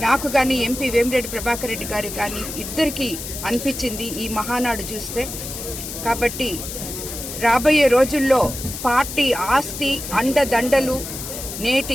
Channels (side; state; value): left; noise; hiss, 8 dB below the sound